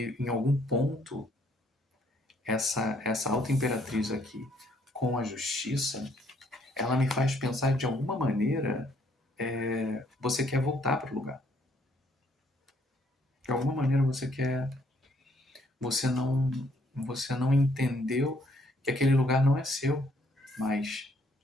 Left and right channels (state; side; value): normal; both; correlation 0.67